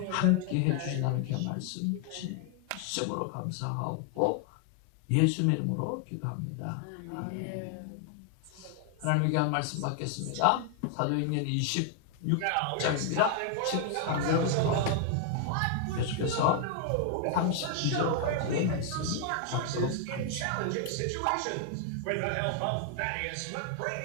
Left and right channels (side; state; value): both; different; correlation 0.00